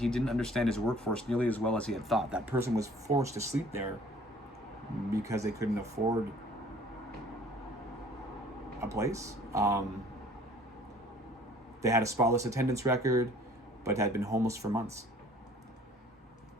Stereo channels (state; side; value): normal; both; correlation 0.54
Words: didn't understand his workforce nearly as well as he had thought. That person was forced to sleep there because they couldn't afford a place. They had a spotless attendance record, but had been homeless for months.